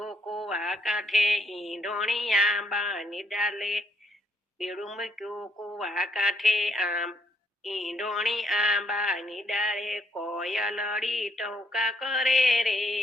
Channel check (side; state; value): both; normal; correlation 0.71